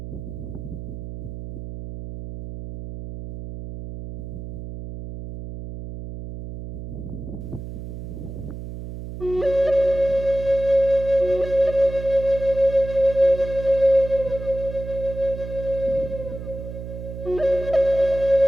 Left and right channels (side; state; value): right; noise; hum, 9 dB below the sound